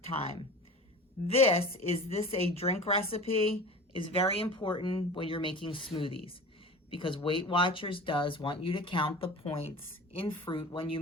time. Is this a drink recipe is very important when you're making smoothies, because Weight Watchers does want you to count the points in fruit when you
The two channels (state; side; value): normal; both; correlation 0.37